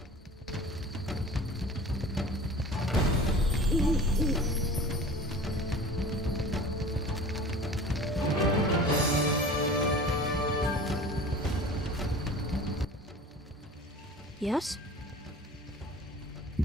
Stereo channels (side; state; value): both; normal; correlation 0.40